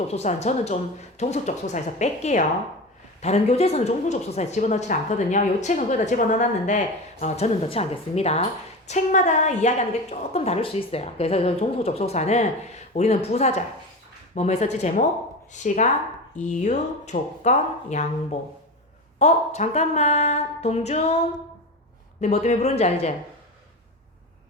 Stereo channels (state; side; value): normal; both; correlation 0.25